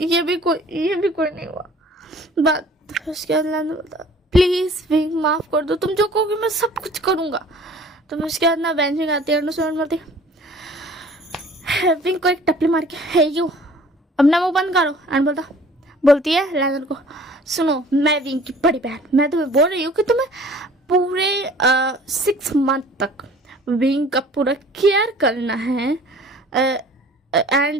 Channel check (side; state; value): both; normal; correlation 0.50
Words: ये भी कोई नहीं हुआ बात। फिर उसके बाद लैंडन बोलता प्लीज़ विंग माफ़ कर दो, तुम जो कहोगे मैं सब कुछ करूँगा। तो फिर उसके बाद ना बेंचिंग आती है और बोलती विंग को एक टपली मार के है यू अपना मुँह बंद करो। एंड बोलती है लैंडन को सुनो मैं विंग की बड़ी बहन, मैं तुम्हें बोल रही हूँ कि तुम्हें पूरे 6 मंथ तक विंग का पूरा केयर करना है